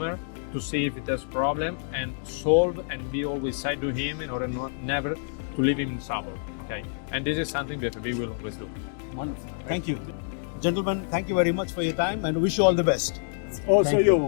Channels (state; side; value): silent; right; digital silence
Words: to see if it has problem and solve, and be always side to him in order never to leave him in trouble. Okay, and this is something that we will always do. Wonderful. Thank you. Gentlemen, thank you very much for your time and wish you all the best. Also Thank